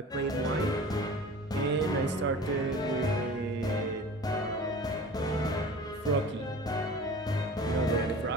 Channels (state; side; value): normal; both; correlation 0.40